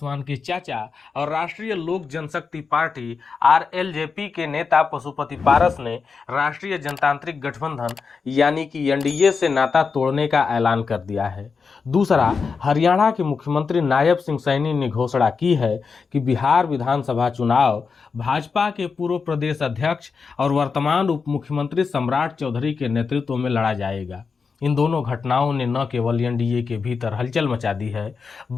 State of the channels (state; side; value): quieter; right; 5.2 dB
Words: के चाचा और राष्ट्रीय लोक जनशक्ति पार्टी आरएलजेपी के नेता पशुपति पारस ने राष्ट्रीय जनतांत्रिक गठबंधन यानी कि एनडीए से नाता तोड़ने का ऐलान कर दिया है। दूसरा, हरियाणा के मुख्यमंत्री नायब सिंह सैनी ने घोषणा की है कि बिहार विधानसभा चुनाव भाजपा के पूर्व प्रदेश अध्यक्ष और वर्तमान उप मुख्यमंत्री सम्राट चौधरी के नेतृत्व में लड़ा जाएगा। इन दोनों घटनाओं ने न केवल एनडीए के भीतर हलचल मचा दी है,